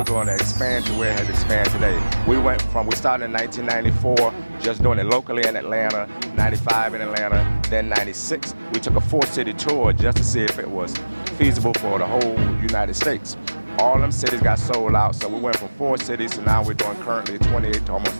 going to expand to where it has expanded today. We started in 1994, just doing it locally in Atlanta, 95 in Atlanta, then 96. We took a 4-city tour just to see if it was feasible for the whole United States. All them cities got sold out, so we went from 4 cities to now we're doing currently 28 to almost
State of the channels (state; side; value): inverted; both; correlation -1.00